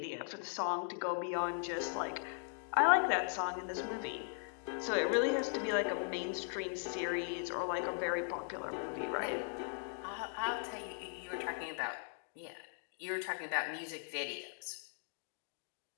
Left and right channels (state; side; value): silent; right; 52 dB below the other